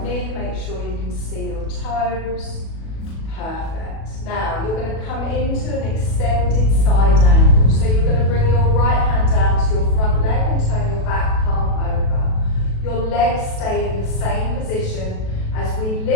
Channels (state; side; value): late; right; 37 ms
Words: knee, make sure you can see your toes. Perfect. Now you're going to come into an extended side angle. So you're going to bring your right hand down to your front leg and turn your back palm over. Your legs stay in the same position as we